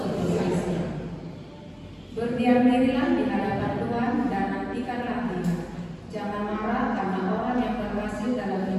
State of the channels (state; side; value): identical; both; correlation 1.00